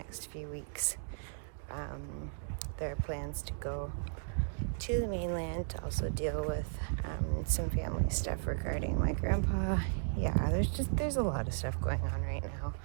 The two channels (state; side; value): silent; left; digital silence